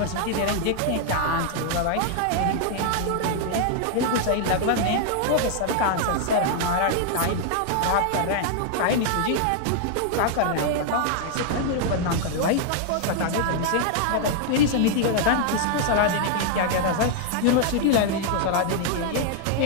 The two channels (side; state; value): both; different; correlation 0.00